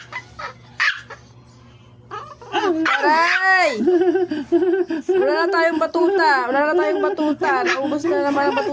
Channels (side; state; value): both; identical; correlation 1.00